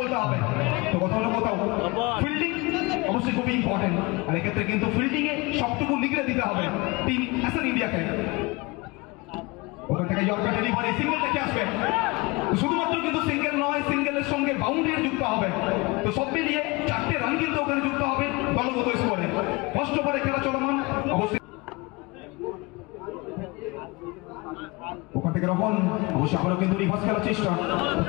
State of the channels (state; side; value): quieter; right; 24.9 dB